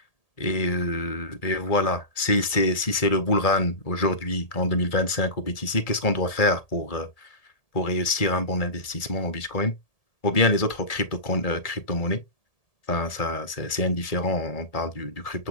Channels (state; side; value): late; right; 1.8 ms